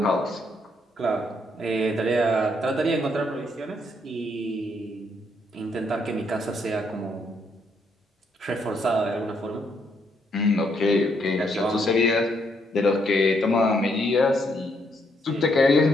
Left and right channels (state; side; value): normal; both; correlation 0.73